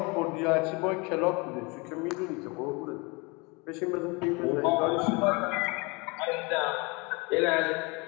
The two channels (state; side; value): quieter; right; 28.1 dB